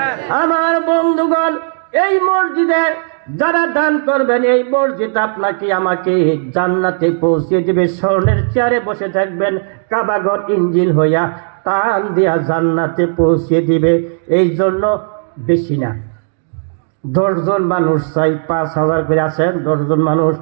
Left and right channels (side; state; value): left; silent; digital silence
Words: আমার বন্ধুগণ, এই মসজিদে যারা দান করবেন, এই মসজিদ আপনাকে আমাকে জান্নাতে পৌঁছে দেবে। স্বর্ণের চেয়ারে বসে থাকবেন, কাবাগর ইঞ্জিল হইয়া টান দিয়া জান্নাতে পৌঁছে দিবে। এই জন্য বেশি না, 10 জন মানুষ চাই, 5,000 করে আছেন, 10 জন মানুষ